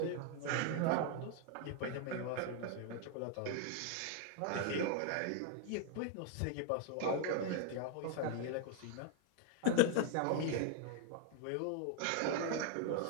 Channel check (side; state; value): both; different; correlation 0.00